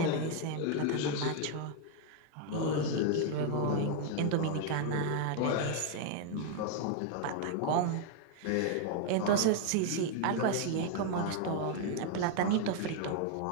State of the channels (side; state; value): both; different; correlation 0.00